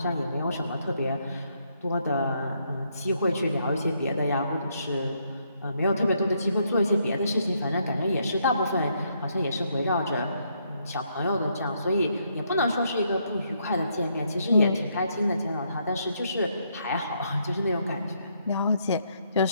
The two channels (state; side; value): inverted; both; correlation -0.74